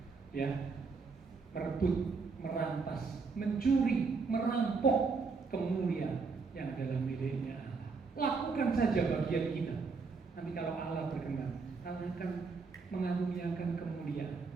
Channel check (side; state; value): left; quieter; 4.6 dB